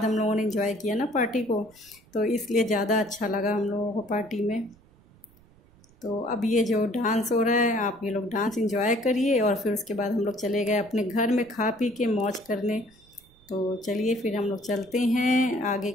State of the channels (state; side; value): noise; right; rumble, 28 dB below the sound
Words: हम लोगों ने इंजॉय किया ना पार्टी को, तो इसलिए ज़्यादा अच्छा लगा हम लोगों को पार्टी में। तो अब ये जो डांस हो रहा है, आप ये लोग डांस एंजॉय करिए और फिर उसके बाद हम लोग चले गए अपने घर में खा पी के मौज करने। तो चलिए फिर हम लोग चलते हैं, आगे